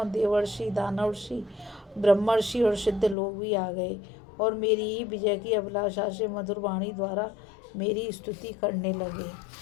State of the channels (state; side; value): drops out; right; at 3.2 s